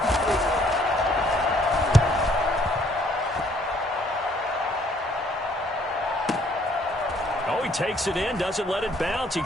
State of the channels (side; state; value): both; normal; correlation 0.63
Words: Oh, he takes it in, doesn't let it bounce. He